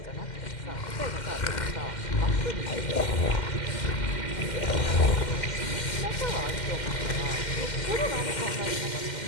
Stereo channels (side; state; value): right; late; 2.1 ms